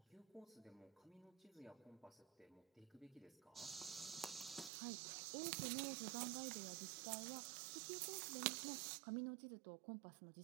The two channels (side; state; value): left; drops out; at 4.7 s